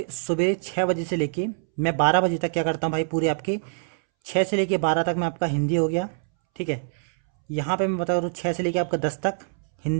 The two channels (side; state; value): left; silent; 62 dB below the other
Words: 6 बजे से लेके मैं 12 बजे तक क्या करता हूँ भाई, पूरे आपके 6 से लेके 12 तक मैं आपका हिंदी हो गया। ठीक है, यहाँ पे मैं बता रहा हूँ 6 से लेके आपका 10 तक